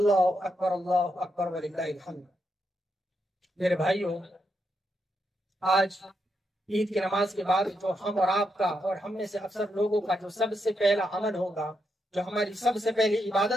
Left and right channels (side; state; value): both; normal; correlation 0.82